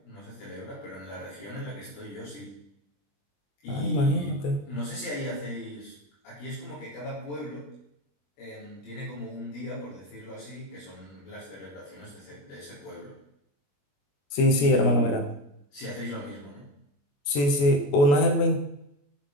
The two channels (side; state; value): right; late; 21 ms